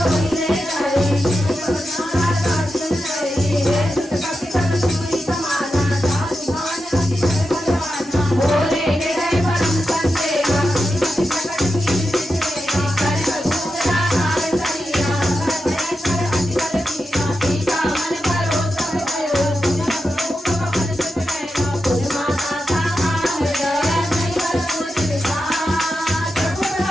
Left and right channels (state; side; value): normal; both; correlation 0.89